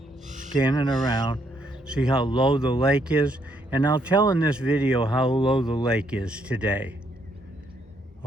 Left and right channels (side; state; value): both; normal; correlation 0.73